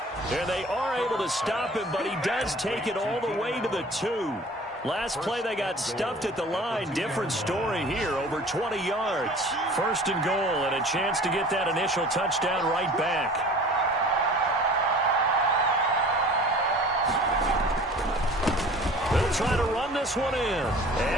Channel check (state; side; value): normal; both; correlation 0.45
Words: And they are able to stop him, but he does take it all the way to the 2. Last play, they got stuffed at the line. Different story here, over 20 yards. 1st and goal, and a chance to get that initial touchdown right back. They'll try to run this one in.